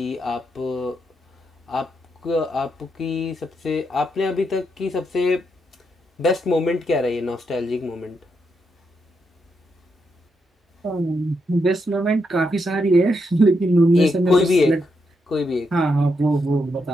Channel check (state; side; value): normal; both; correlation 0.81